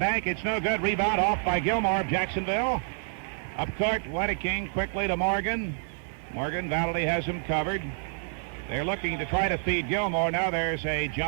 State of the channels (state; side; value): silent; left; 59 dB below the other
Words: It's no good. Rebound off by Gilmore of Jacksonville. Up court, Wedeking quickly to Morgan. Morgan, Valley has him covered. They're looking to try to feed Gilmore. Now there's a